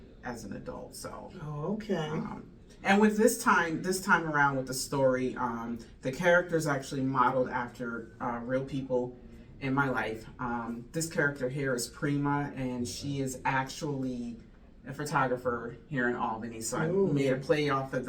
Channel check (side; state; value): both; identical; correlation 1.00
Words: as an adult. So. Oh, okay. And with this time around with the story, the character's actually modeled after real people in my life. This character here is Prima, and she is actually a photographer here in Albany. So I made a play off of